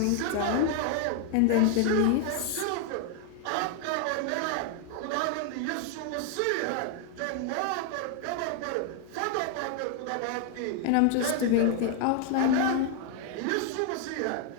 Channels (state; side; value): different; both; correlation 0.00